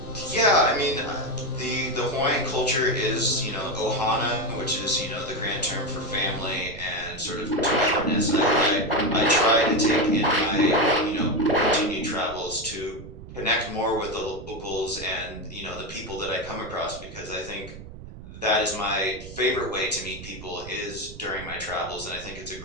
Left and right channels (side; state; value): right; noise; rumble, 14 dB below the sound